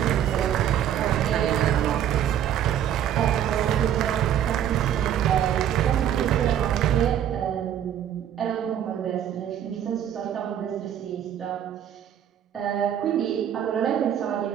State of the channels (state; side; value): quieter; left; 10.0 dB